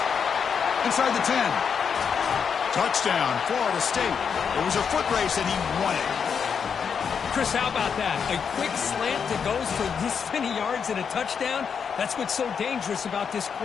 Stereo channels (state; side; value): quieter; right; 6.7 dB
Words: Inside the 10. Touchdown, Florida State. It was a foot race, and he won it. Chris, how about that? A quick slant that goes for this many yards and a touchdown. That's what's so dangerous about this